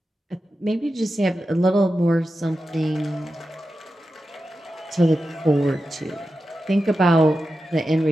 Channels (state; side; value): normal; both; correlation 0.91